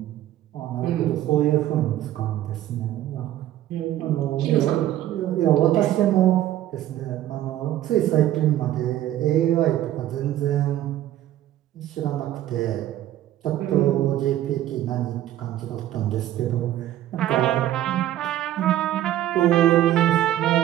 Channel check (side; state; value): left; quieter; 13.1 dB